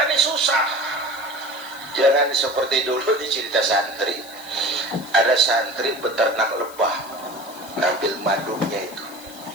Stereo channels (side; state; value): left; noise; hiss, 18 dB below the sound